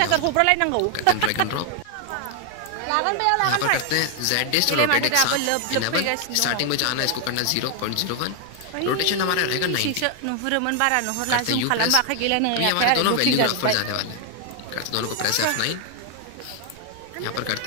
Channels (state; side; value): different; both; correlation 0.00